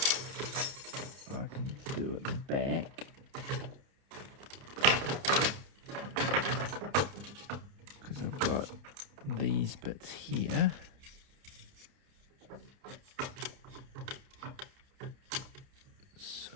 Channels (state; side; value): late; left; 30 ms